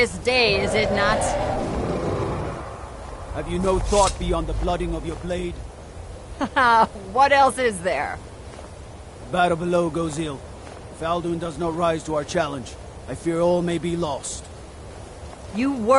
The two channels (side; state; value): both; identical; correlation 1.00